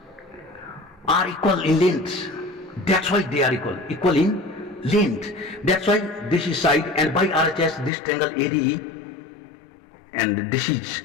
are equal in length. That's why they are equal in length. That's why this is side, and by RHS this triangle ADE and this is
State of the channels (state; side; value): drops out; right; at 7.9 s